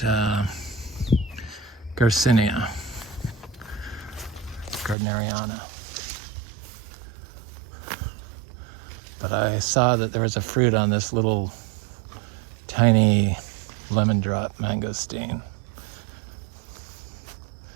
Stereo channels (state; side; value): drops out; left; at 5.0 s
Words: Garcinia, Gardneriana. But I saw that there was a fruit on this little tiny lemon drop mangosteen.